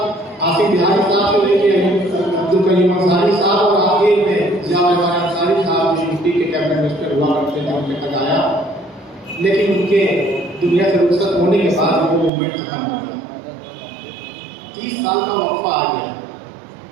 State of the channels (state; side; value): drops out; left; at 12.3 s